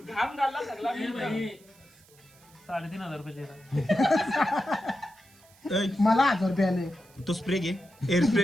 घालला सगळा 3,500 रुपये मला 1000 रुपये आले. तो स्प्रे घे. हेअर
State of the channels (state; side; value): noise; right; hiss, 27 dB below the sound